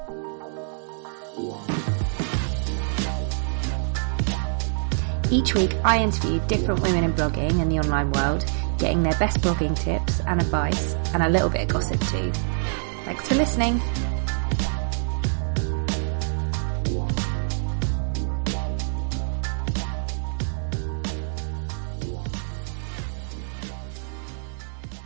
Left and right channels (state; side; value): silent; left; digital silence